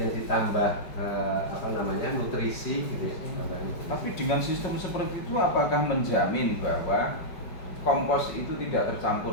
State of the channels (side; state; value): right; late; 5.0 ms